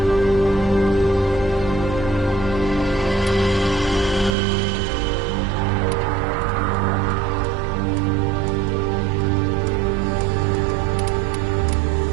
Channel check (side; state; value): left; drops out; at 4.4 s